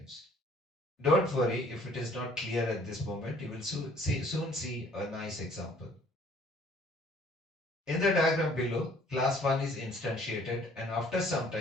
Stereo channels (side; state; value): both; normal; correlation 0.57